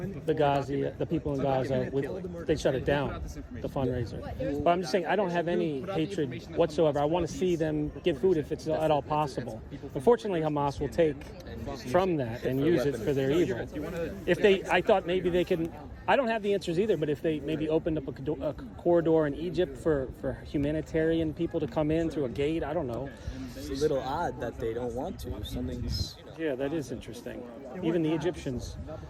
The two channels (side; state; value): both; identical; correlation 1.00